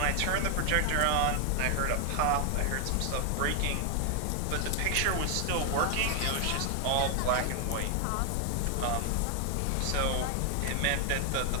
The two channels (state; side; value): different; both; correlation 0.00